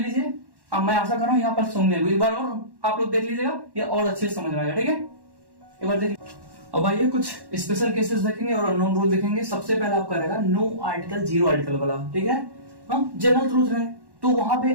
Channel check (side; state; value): left; late; 1.1 ms